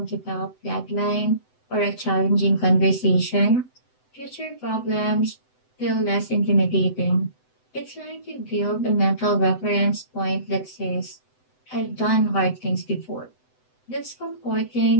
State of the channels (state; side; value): late; right; 7.9 ms